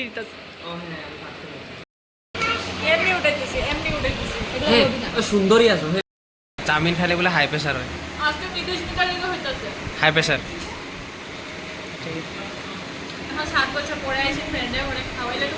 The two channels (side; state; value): both; identical; correlation 1.00